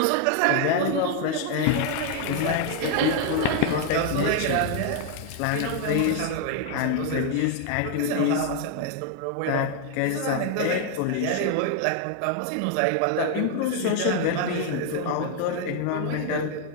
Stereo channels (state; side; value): different; both; correlation 0.01